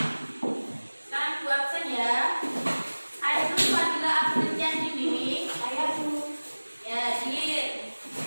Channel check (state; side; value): inverted; both; correlation -1.00